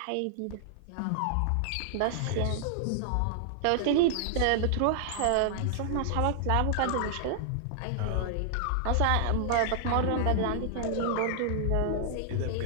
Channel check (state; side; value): different; both; correlation -0.01